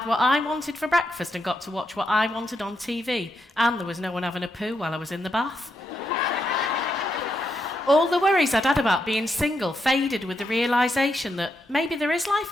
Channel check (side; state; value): both; normal; correlation 0.82